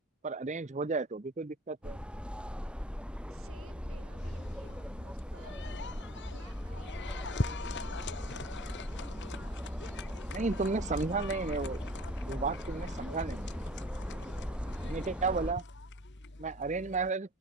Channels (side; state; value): both; normal; correlation 0.47